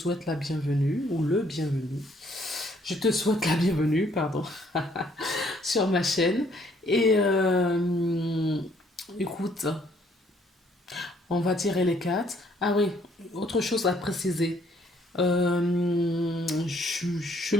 la bienvenue ou le bienvenu. Je te souhaite la bienvenue, pardon, sur ma chaîne. Et écoute, on va tirer les cartes. Ah oui, autre chose à préciser. Je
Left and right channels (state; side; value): normal; both; correlation 0.65